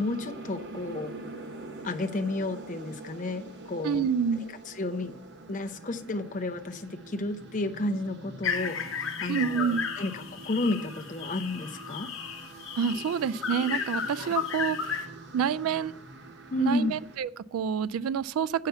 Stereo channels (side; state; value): both; normal; correlation 0.33